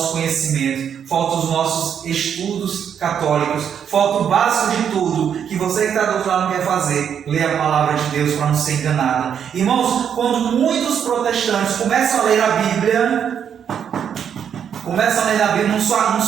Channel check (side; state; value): left; quieter; 8.2 dB